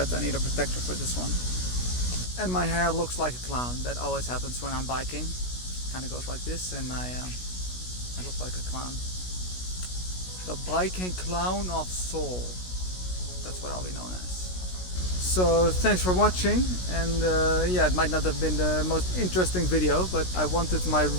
I need a protector for this one. And my hair looks like a clown. That always happens when I'm biking. Kind of goes like this, and I look like a clown. The biking clown of Seoul. That's what I'll be known as. So thanks for watching, and yeah, it might not have been the most interesting video, but I wanted my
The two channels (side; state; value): right; late; 16 ms